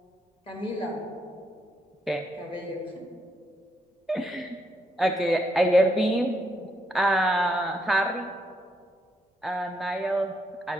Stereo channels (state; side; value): normal; both; correlation 0.77